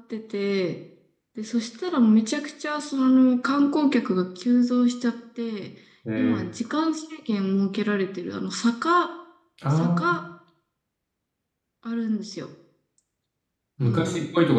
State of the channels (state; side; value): identical; both; correlation 1.00